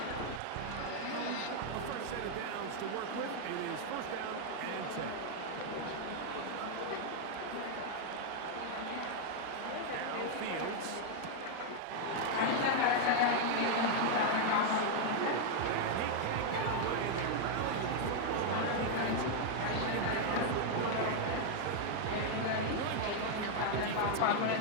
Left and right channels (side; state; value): both; different; correlation 0.00